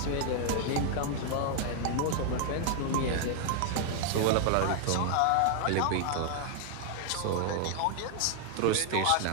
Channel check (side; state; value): both; different; correlation 0.00